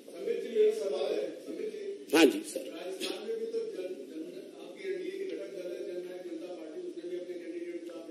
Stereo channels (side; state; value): both; identical; correlation 1.00